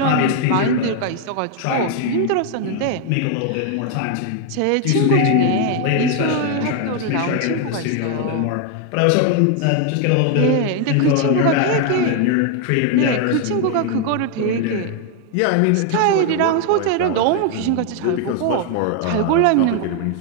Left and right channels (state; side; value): different; both; correlation 0.01